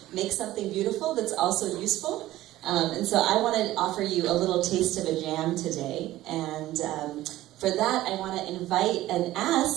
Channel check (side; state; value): left; quieter; 15.4 dB